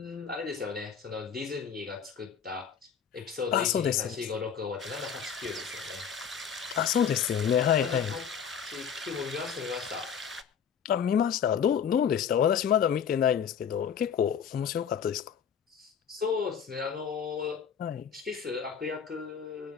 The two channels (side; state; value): right; quieter; 7.6 dB